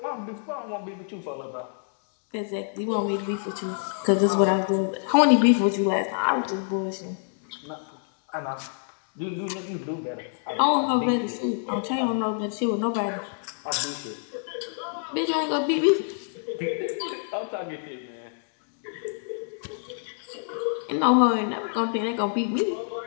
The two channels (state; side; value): silent; right; 60 dB below the other